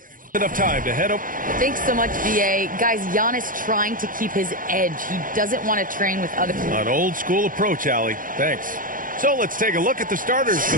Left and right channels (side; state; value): left; late; 0.40 ms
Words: Enough time to head up. Thanks so much, BA. Guys, Giannis trying to keep his edge. He doesn't want to train with other... An old school approach, Allie. Thanks. So let's take a look at the starters for